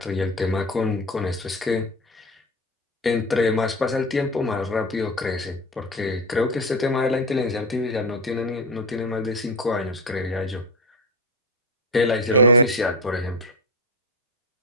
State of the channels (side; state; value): both; normal; correlation 0.22